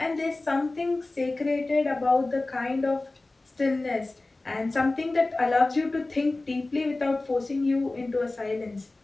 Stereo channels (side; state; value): right; quieter; 3.1 dB